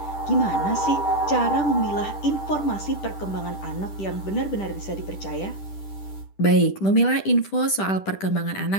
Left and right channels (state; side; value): late; right; 10 ms